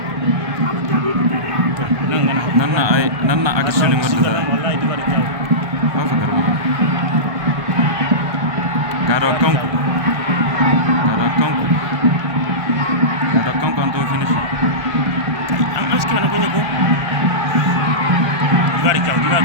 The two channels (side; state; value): left; late; 1.5 ms